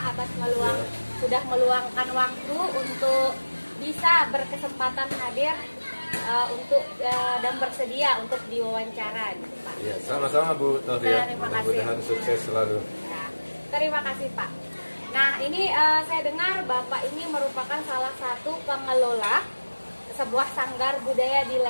atas sudah meluangkan waktu untuk bisa berkesempatan hadir dan bersedia untuk diwawancara gitu, Pak. Iya, sama-sama Bu Tohriah. Terima kasih. Mudah-mudahan sukses selalu. Ya, terima kasih Pak. Nah, ini saya dengar Bapak ini merupakan salah satu pengelola sebuah sanggar budaya di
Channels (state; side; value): inverted; both; correlation -1.00